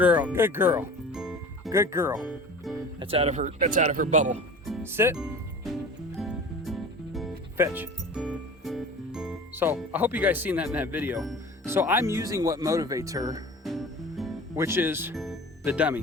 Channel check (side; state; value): both; normal; correlation 0.39